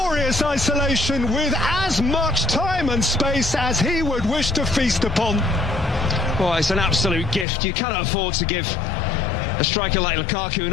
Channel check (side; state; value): right; drops out; at 7.5 s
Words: isolation with as much time and space as he would wish to feast upon. Well, it's an absolute gift. You cannot afford to give a striker like Lukaku